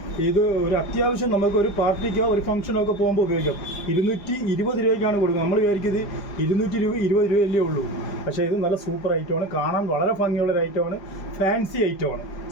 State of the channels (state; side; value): late; right; 5.0 ms